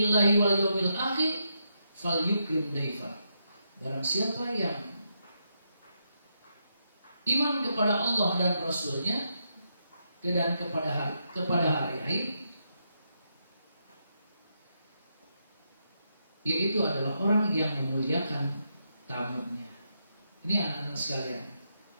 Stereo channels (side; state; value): both; inverted; correlation -0.81